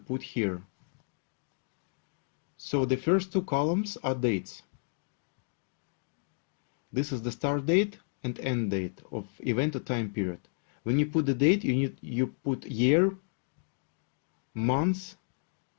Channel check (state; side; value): silent; right; digital silence